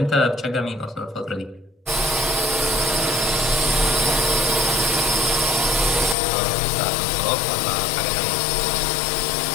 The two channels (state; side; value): drops out; right; at 6.2 s